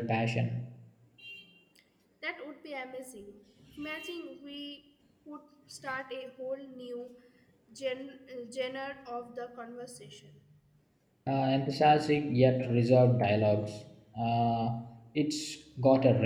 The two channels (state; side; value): identical; both; correlation 1.00